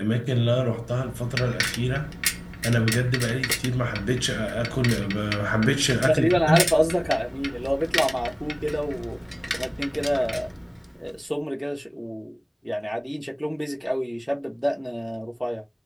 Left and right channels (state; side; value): identical; both; correlation 1.00